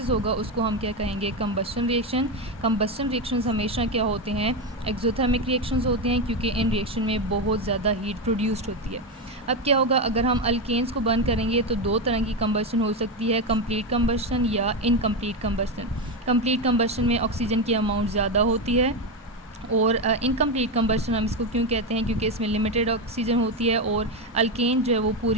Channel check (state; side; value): normal; both; correlation 0.12